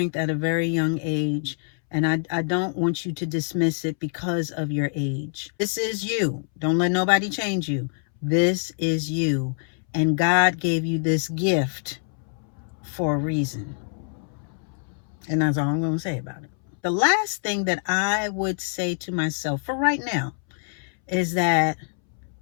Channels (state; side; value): silent; right; 62 dB below the other